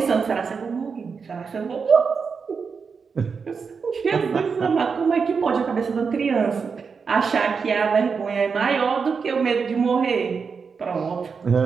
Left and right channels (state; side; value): quieter; left; 5.5 dB